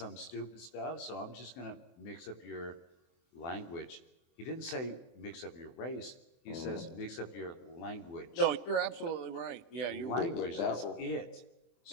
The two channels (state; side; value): late; right; 24 ms